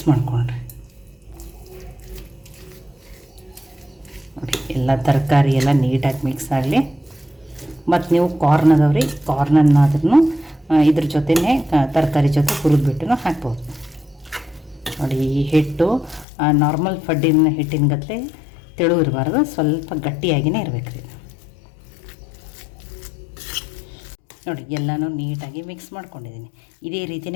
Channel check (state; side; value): drops out; right; at 16.2 s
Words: ಮಾಡಿಕೊಂಡ್ರೆ ನೋಡಿ ಎಲ್ಲ ತರಕಾರಿ ಎಲ್ಲ ನೀಟಾಗಿ ಮಿಕ್ಸ್ ಆಗಲಿ. ಮತ್ತು ನೀವು ಕಾರ್ನ್ ಅದಾವ್ರಿ, ಕಾರ್ನನ್ನಾದ್ರೂ ಇದ್ರ ಜೊತೆನೇ ತರಕಾರಿ ಜೊತೆ ಹುರಿದ್ಬಿಟ್ಟು ಹಾಕ್ಬೋದು. ನೋಡಿ ಈ ಹಿಟ್ಟು ನಾರ್ಮಲ್ ಫಡ್ಡಿನ ಹಿಟ್ಟಿನ ಗತ್ತಲೆ ತೆಳು ಇರಬಾರ್ದು, ಸ್ವಲ್ಪ ಗಟ್ಟಿಯಾಗಿಯೇ ಇರಬೇಕು ರೀ. ನೋಡಿ ಎಲ್ಲನೂ ನೀಟಾಗಿ ಮಿಕ್ಸ್ ಮಾಡ್ಕೊಂಡಿದ್ದೀನಿ. ಇದೇ